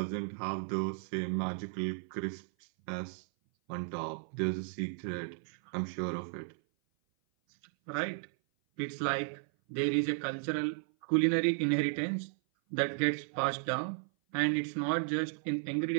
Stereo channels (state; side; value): silent; left; 55 dB below the other